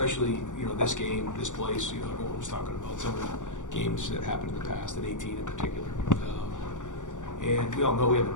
this game, this place. Everyone was talking about some of the games that happened in the past, in 18 in particular. And we all know we have a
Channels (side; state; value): right; late; 0.86 ms